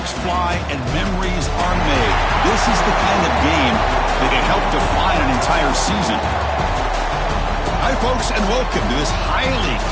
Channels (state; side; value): identical; both; correlation 1.00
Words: fly and memories are made. This is the kind of game that can help define an entire season. Hi, folks, and welcome to this highly